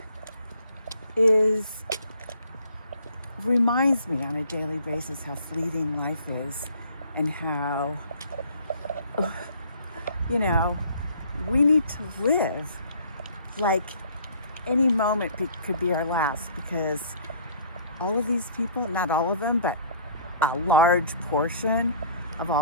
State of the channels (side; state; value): both; inverted; correlation -0.55